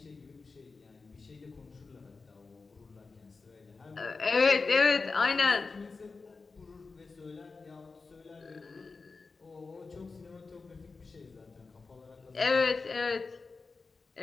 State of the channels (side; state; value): right; quieter; 4.2 dB